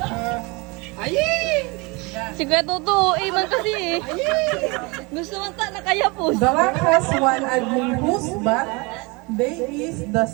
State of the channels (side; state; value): left; quieter; 27.4 dB